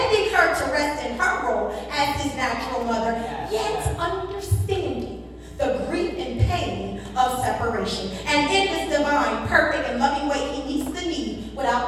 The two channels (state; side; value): identical; both; correlation 1.00